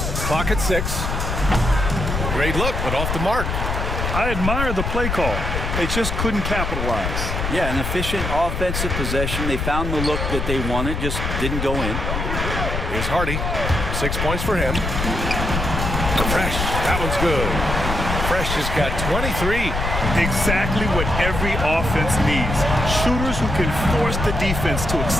Clock at 6. Great look, but off the mark. I admire the play call. They just couldn't capitalize. Yeah, an efficient offensive possession. They found the look that they wanted, just didn't go in. Here's Hardy. 6 points for him. Fresh. That one's good. Fresh has got 23. Exactly what every offense needs. Shooters who can force the defense to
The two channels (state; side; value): noise; left; rumble, 2 dB below the sound